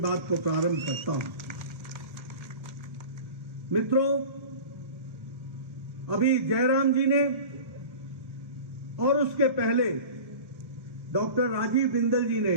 को प्रारंभ करता हूं। मित्रों, अभी जयराम जी ने और उसके पहले डॉक्टर राजीव बिंदल जी ने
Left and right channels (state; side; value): late; left; 1.6 ms